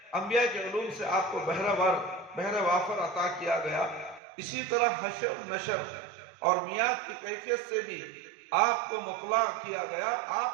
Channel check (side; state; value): left; drops out; at 4.2 s